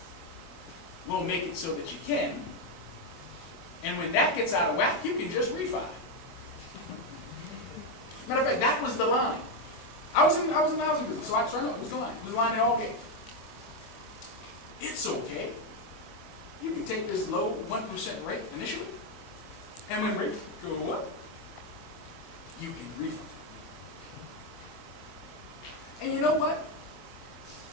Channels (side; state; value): right; late; 25 ms